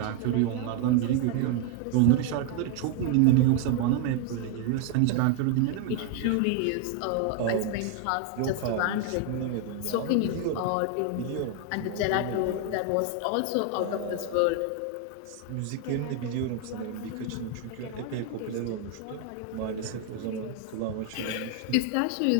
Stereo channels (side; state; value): both; different; correlation 0.01